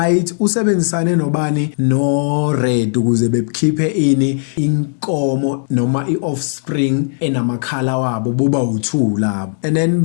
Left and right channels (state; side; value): silent; right; digital silence